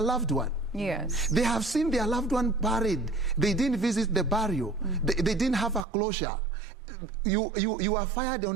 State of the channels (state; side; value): drops out; left; at 5.9 s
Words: one. Yes. They have seen their loved one buried. They didn't visit the burial. They didn't have a closure. You are fired